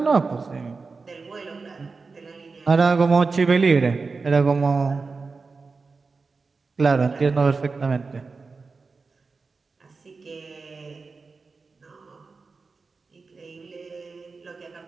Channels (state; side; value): quieter; left; 4.3 dB